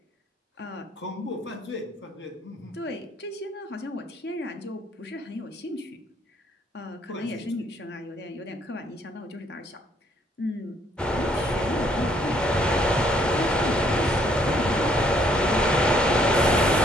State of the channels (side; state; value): both; normal; correlation 0.67